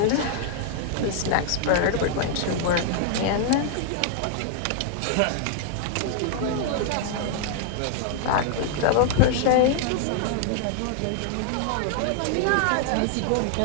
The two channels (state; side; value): different; both; correlation 0.00